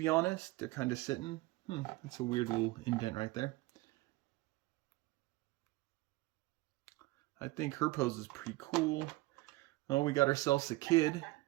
honest. They're kind of sitting. That's a weird little indent right there. I think her pose is pretty cool. Oh, we got ourselves a kid.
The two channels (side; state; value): left; quieter; 20.2 dB